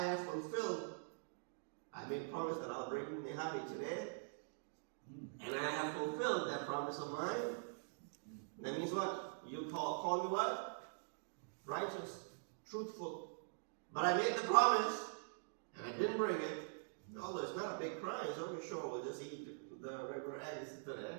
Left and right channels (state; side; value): silent; left; digital silence